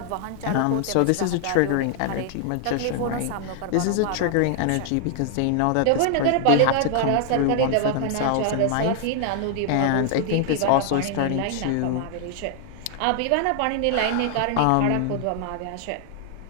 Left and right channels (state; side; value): different; both; correlation 0.00